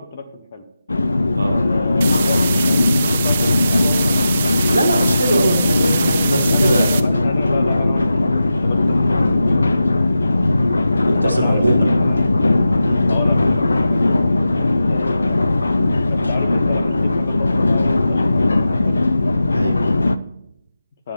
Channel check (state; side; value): inverted; both; correlation -0.91